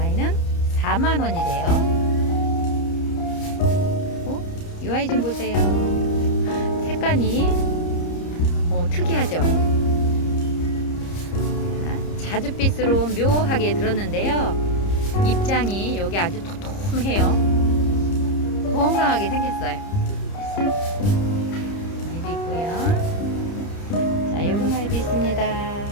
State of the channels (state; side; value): late; right; 30 ms